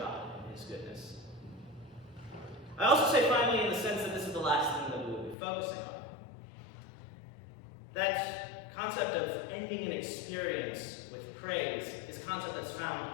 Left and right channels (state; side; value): drops out; right; at 5.4 s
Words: and His goodness. I also say finally in the sense that this is the last thing that we will be focusing on. That concept of ending an experience with praise is a concept that's